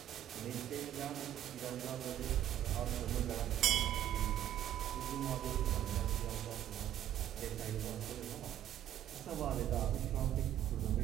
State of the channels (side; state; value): left; quieter; 11.7 dB